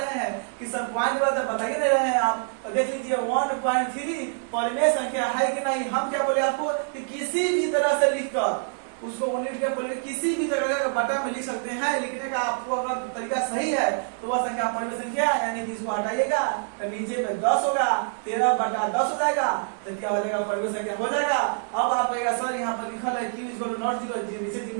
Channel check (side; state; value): left; silent; digital silence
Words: हैं कि सर पॉइंट बता ही नहीं रहे हैं आप, तो देख लीजिए 1.3 परिमेय संख्या है कि नहीं। हम क्या बोले आपको कि किसी भी तरह से लिखकर उसको लिख के बोले किसी भी तरह का बटा में लिख सकते हैं। लिखने का आपको अगर तरीका सही है तो वह संख्या परिमेय संख्या, यानी कि इसको हटाइएगा तो नीचे में 10 होगा, 13/10 हो जाएगा, तो क्या हो जाएगा परिमेय संख्या हो जाएगा। अब आप कहेगा सर यहाँ पर लिखा है q = नॉट 0, नीचे